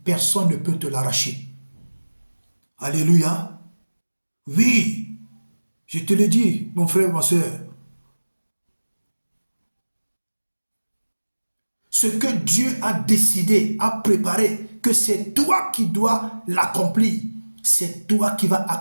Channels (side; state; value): both; inverted; correlation -1.00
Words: personne ne peut te l'arracher. Alléluia. Oui, je te le dis, mon frère, ma soeur. Ce que Dieu a décidé, a préparé, que c'est toi qui dois l'accomplir. C'est toi qui vas